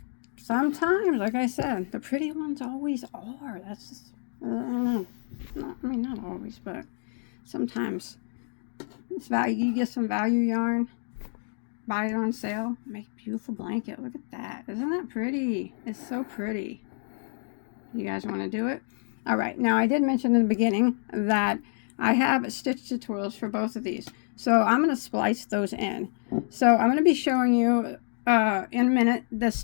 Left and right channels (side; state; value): right; silent; 59 dB below the other